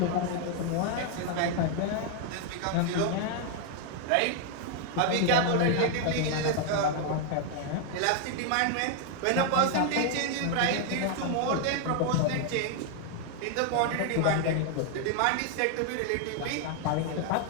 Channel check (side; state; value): both; different; correlation 0.00